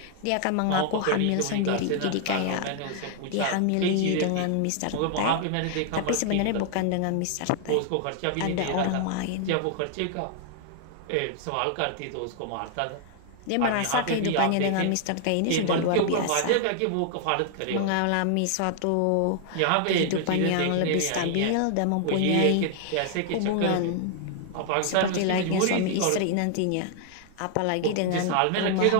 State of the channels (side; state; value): both; different; correlation 0.00